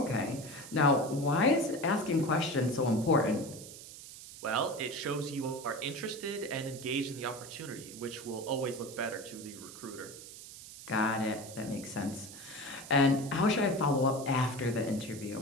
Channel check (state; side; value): noise; right; hiss, 14 dB below the sound